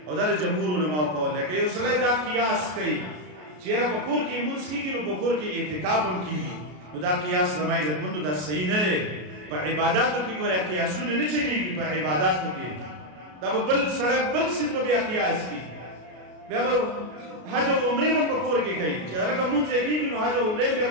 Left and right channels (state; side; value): late; left; 33 ms